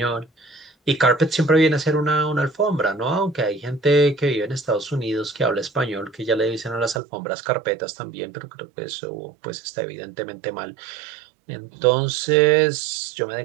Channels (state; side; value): drops out; left; at 7.0 s